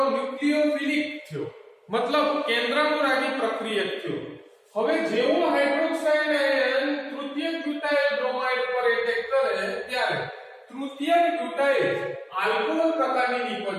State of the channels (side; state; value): both; identical; correlation 1.00